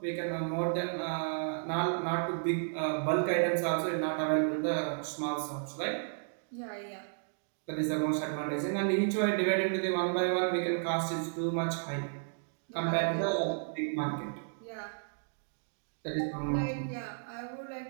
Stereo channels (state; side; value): silent; left; digital silence